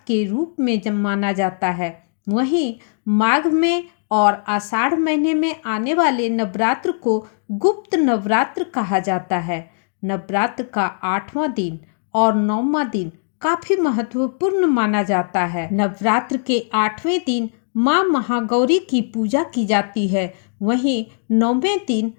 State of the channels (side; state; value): right; silent; digital silence